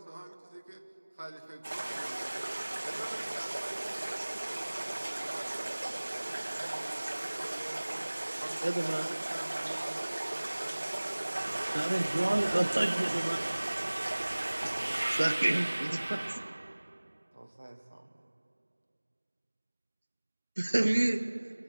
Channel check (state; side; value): inverted; both; correlation -1.00